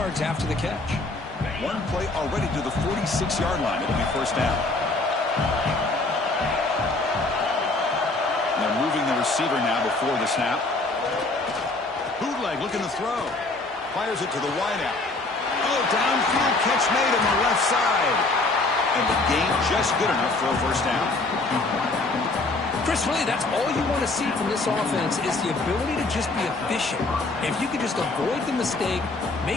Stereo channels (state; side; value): quieter; right; 3.2 dB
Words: after the catch. One play already to the 46-yard line. It'll be first down. They're moving the receiver now before the snap. Bootleg looking to throw. Fires it to the wideout. Oh, downfield catch made on the left side. And the gain just good enough for a first down. Chris, really, that's all you want to see from this offense is the ability to just be efficient. If you could just avoid the mistake,